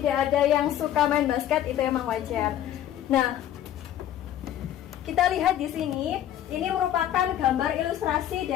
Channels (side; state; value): right; quieter; 11.5 dB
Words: ada yang suka main basket itu memang wajar. Nah, kita lihat di sini, ini merupakan gambar ilustrasi